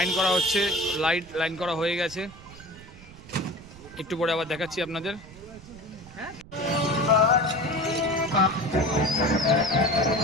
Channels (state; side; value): noise; right; rumble, 19 dB below the sound